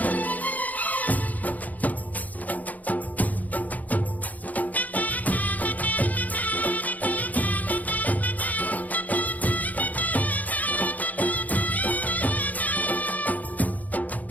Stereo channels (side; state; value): right; late; 0.078 ms